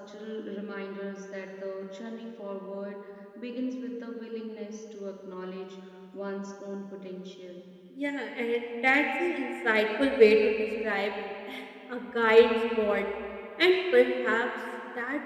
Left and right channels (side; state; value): both; identical; correlation 1.00